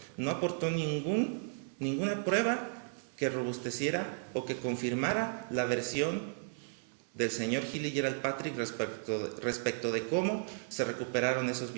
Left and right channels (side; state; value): left; silent; 55 dB below the other